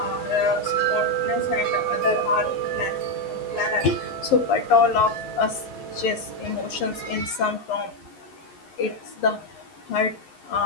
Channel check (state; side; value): late; right; 11 ms